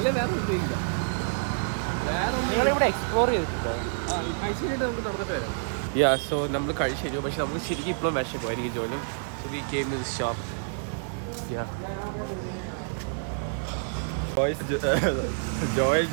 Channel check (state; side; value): silent; left; digital silence